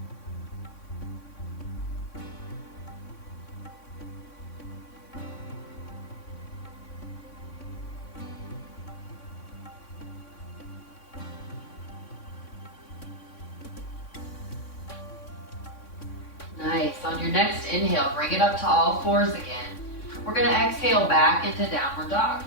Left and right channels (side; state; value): right; late; 3.6 ms